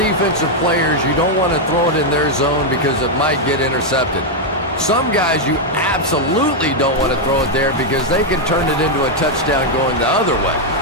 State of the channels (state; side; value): normal; both; correlation 0.00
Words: players, you don't want to throw it in their zone because it might get intercepted. Some guys, you absolutely don't want to throw it there because they can turn it into a touchdown going the other way.